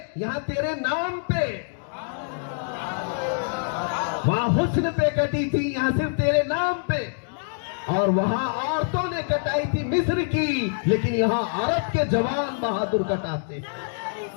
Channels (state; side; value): silent; right; digital silence